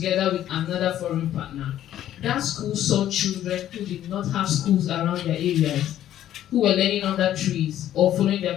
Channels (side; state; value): right; quieter; 11.9 dB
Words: with another foreign partner. That school saw children who did not have schools around their areas, who were learning under trees or following